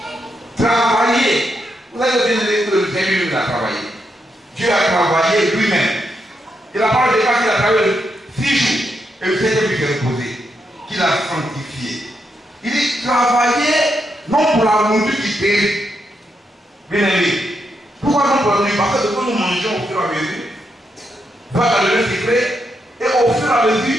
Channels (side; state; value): both; normal; correlation 0.81